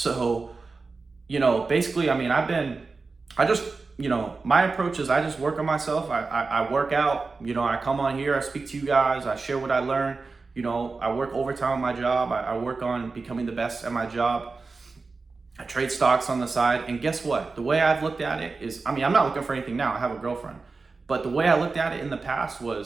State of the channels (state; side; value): quieter; left; 4.1 dB